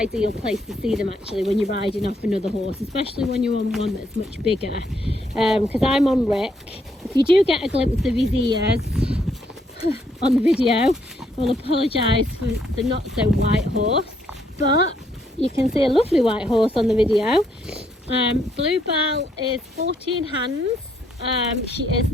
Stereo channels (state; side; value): normal; both; correlation 0.72